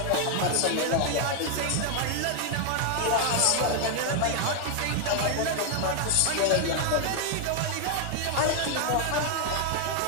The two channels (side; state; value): both; different; correlation 0.00